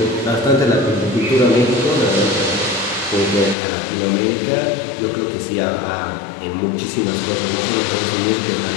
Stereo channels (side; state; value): right; drops out; at 3.6 s